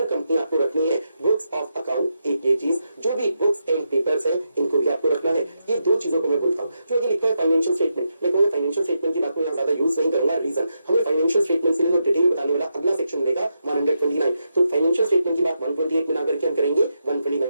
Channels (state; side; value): inverted; both; correlation -0.84